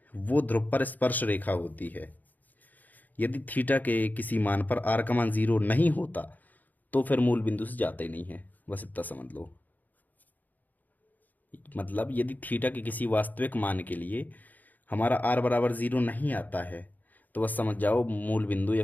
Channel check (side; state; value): right; late; 0.083 ms